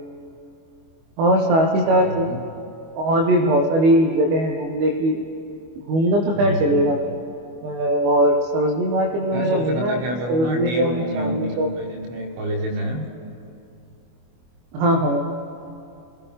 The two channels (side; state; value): left; late; 25 ms